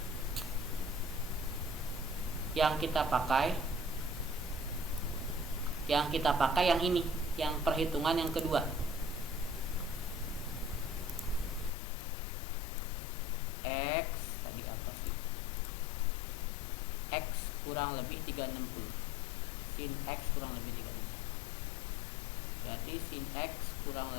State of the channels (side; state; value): right; drops out; at 11.7 s